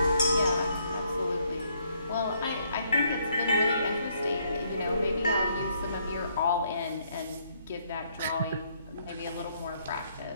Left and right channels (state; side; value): inverted; both; correlation -0.71